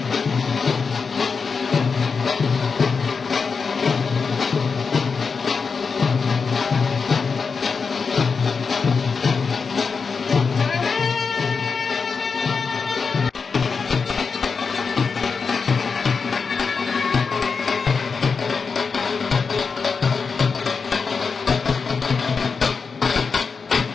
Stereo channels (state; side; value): quieter; right; 5.2 dB